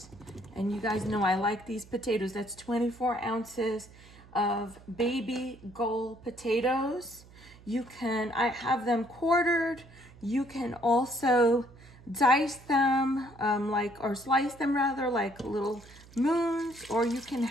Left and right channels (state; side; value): noise; right; hum, 22 dB below the sound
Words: And you guys know I like these potatoes. That's 24 ounces of baby gold potatoes. I have them quartered. You can also dice them or slice them rather, like little moons, or you can